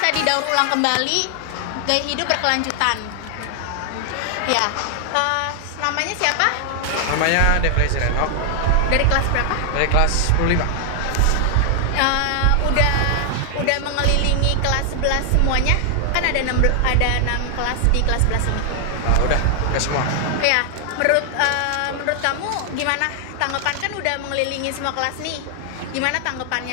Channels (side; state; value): both; different; correlation 0.00